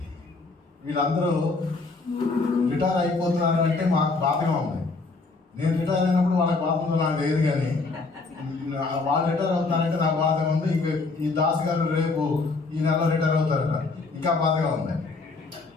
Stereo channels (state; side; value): quieter; right; 3.8 dB